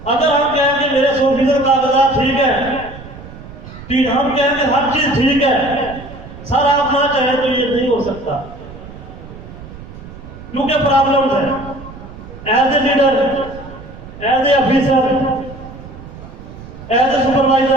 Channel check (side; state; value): right; noise; rumble, 15 dB below the sound